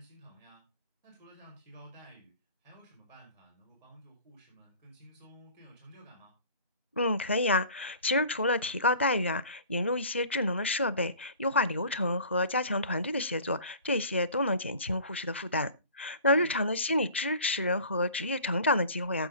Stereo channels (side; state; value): both; inverted; correlation -0.45